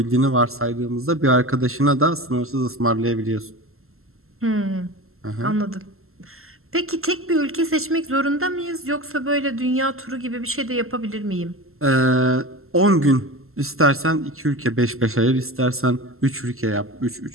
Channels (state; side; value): late; left; 0.62 ms